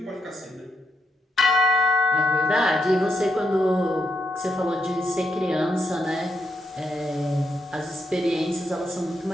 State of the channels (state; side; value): normal; both; correlation 0.81